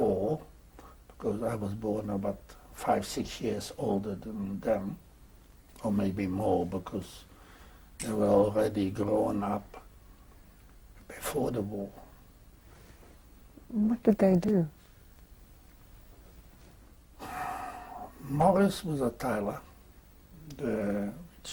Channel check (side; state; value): both; identical; correlation 1.00